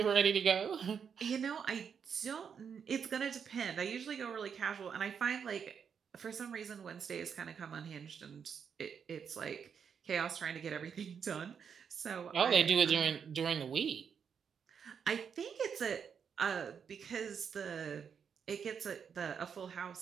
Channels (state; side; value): quieter; left; 7.0 dB